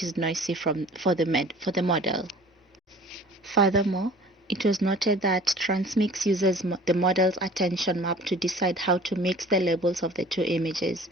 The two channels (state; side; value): normal; both; correlation 0.47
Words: is noisy for the model. Furthermore, it was noted that TransMix uses the model's attention map to decide how to mix the labels of the two images,